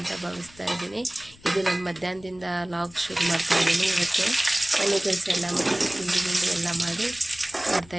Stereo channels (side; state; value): left; noise; rumble, 24 dB below the sound